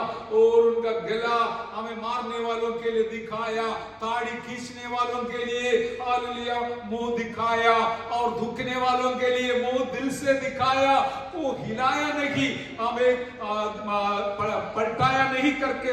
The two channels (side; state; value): both; identical; correlation 1.00